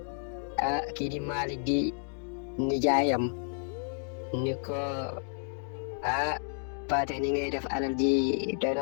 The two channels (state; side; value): silent; right; digital silence